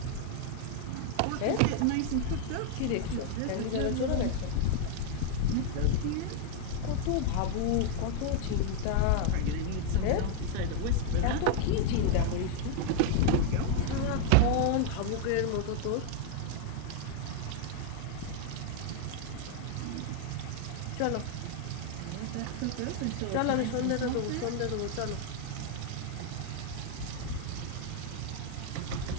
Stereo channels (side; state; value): both; different; correlation 0.00